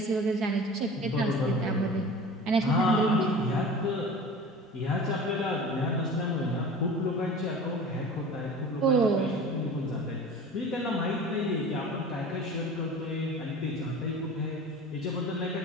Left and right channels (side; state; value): both; normal; correlation 0.38